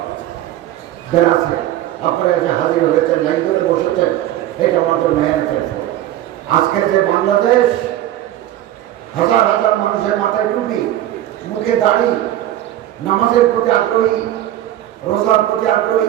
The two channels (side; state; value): left; quieter; 13.1 dB